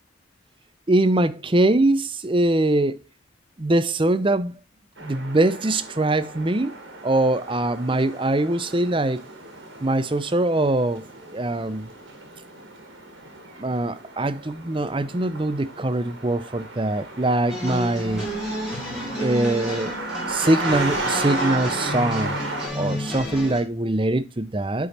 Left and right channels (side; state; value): both; normal; correlation 0.62